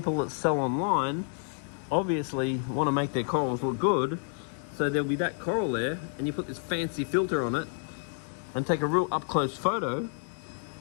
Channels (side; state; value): right; silent; 56 dB below the other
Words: that sell online obviously want to make their corals look good, so there'll be that coral there and you put this fancy filter on it and take a real up close photo